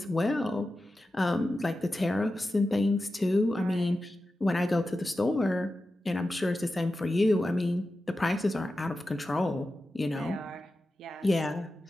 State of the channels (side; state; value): both; normal; correlation 0.92